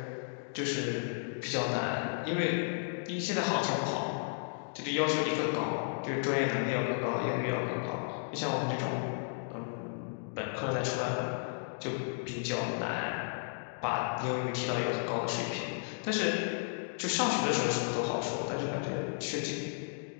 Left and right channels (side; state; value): right; silent; digital silence